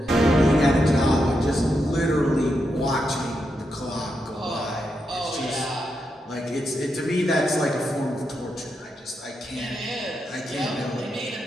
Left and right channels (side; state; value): both; normal; correlation 0.84